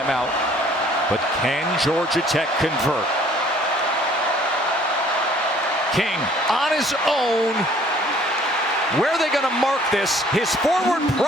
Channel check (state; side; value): normal; both; correlation 0.57